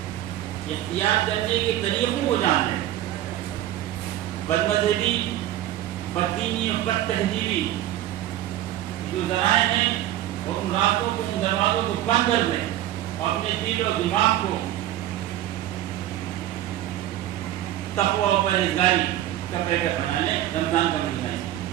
اختیار کرنے کے طریقوں کو جان لیں۔ بد مذہبی، بددینی اور بد تہذیبی جو ذرائع ہیں اور ان راستوں کو، ان دروازوں کو بند کر دیں اور اپنے دل و دماغ کو تقوی و پرہیزگاری کا پیکر بنا لیں۔ رمضان کا مہینہ ہے،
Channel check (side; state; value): left; quieter; 13.3 dB